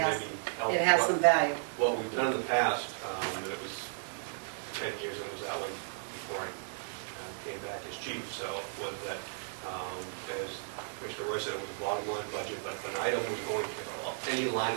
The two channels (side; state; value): left; silent; digital silence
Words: has, maybe help it has some value. What we've done in the past, and it was 10 years, and it was that way before I came back as chief, so was that, as Commissioner Roy said, it was a bottom line budget, but if an item was going to, any line